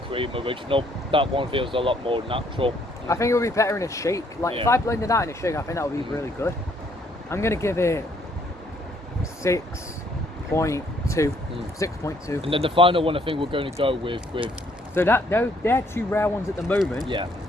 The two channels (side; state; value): both; normal; correlation 0.67